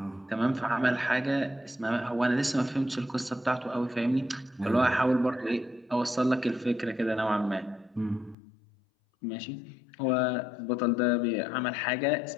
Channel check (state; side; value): drops out; right; at 8.3 s